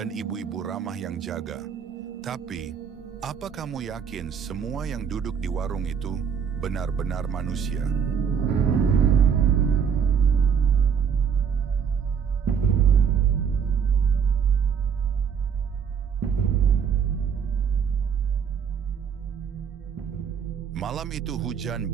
ibu-ibu ramah yang jaga. Tapi, apa kamu yakin semua yang duduk di warung itu benar-benar manusia? Malam itu hujan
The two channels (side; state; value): left; quieter; 7.1 dB